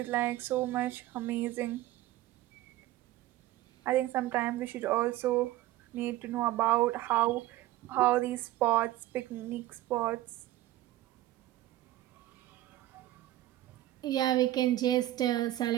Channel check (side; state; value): left; quieter; 15.6 dB